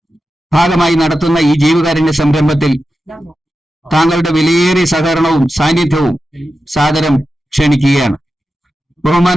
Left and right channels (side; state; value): both; normal; correlation 0.91